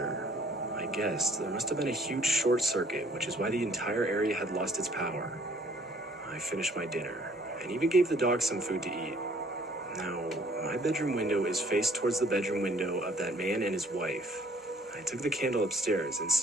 I guessed there must have been a huge short circuit, which is why the entire area had lost its power. I finished my dinner, and even gave the dog some food to eat. Now, my bedroom window is faced towards the bedroom window of that man and his wife. I took the candle upstairs and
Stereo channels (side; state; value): both; normal; correlation 0.60